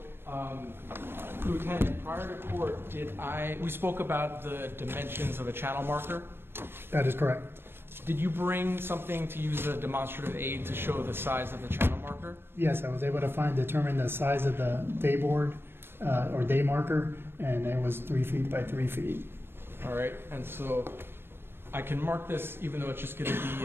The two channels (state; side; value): late; left; 0.11 ms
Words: Lieutenant, prior to court, we spoke about the dimensions of a channel marker. That is correct. Did you bring something to use a demonstrative aid to show the size of the channel marker? Yes, I was able to determine the size of the day board or day marker, and it was 3 feet by 3 feet. All right, and so I can mark this even though it's just going to be